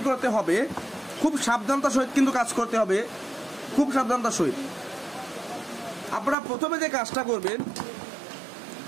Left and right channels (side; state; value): left; drops out; at 6.4 s